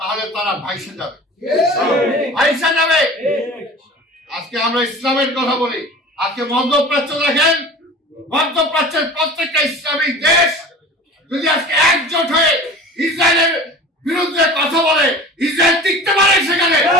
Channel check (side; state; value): both; normal; correlation 0.39